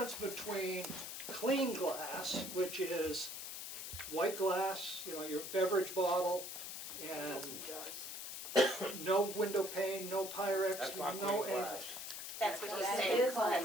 between clean glass, which is white glass, you know, your beverage bottle, and no window pane, no Pyrex, That's not no clean glass. anything. That's what he's That saying. is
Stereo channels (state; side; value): noise; left; hiss, 7 dB below the sound